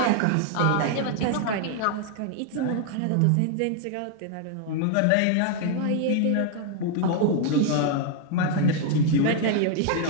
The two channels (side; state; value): both; different; correlation 0.00